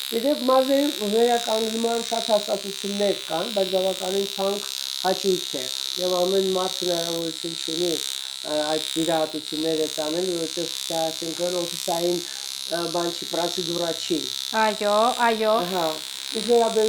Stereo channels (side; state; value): both; identical; correlation 1.00